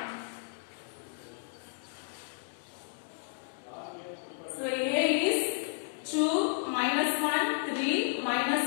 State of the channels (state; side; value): silent; right; digital silence